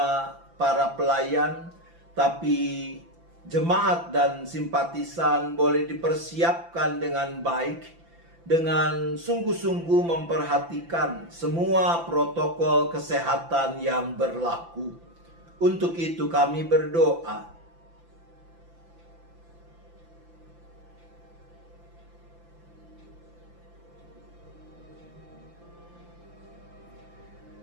para pelayan, tapi jemaat dan simpatisan boleh dipersiapkan dengan baik, dengan sungguh-sungguh memperhatikan semua protokol kesehatan yang berlaku. Untuk itu kami berdoa.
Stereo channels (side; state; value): left; late; 5.9 ms